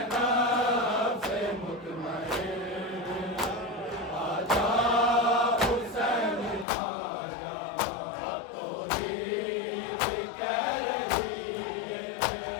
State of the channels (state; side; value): drops out; right; at 6.7 s